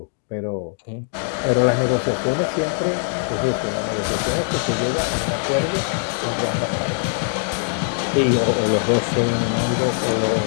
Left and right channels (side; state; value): right; silent; digital silence